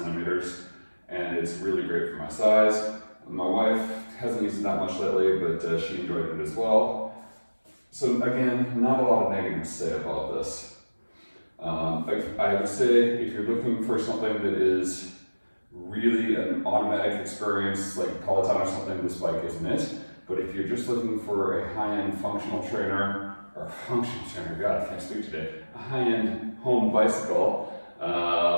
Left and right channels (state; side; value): inverted; both; correlation -1.00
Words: and it's really great for my size. My wife hasn't used it that much lately, but she enjoyed it as well. So again, not a lot of negatives to say about this. I would say if you're looking for something that is really an automatic experience, like Peloton or something, this bike isn't it. But if you're just looking for a high-end functional trainer, God, I can't speak today, a high-end home bicycle